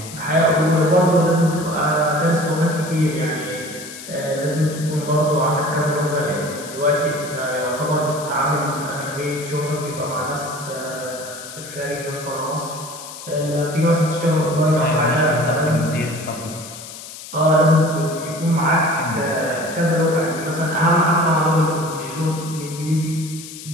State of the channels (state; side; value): noise; left; hiss, 13 dB below the sound